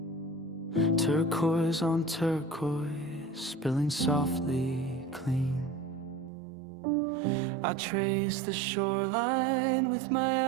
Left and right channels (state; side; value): drops out; left; at 6.3 s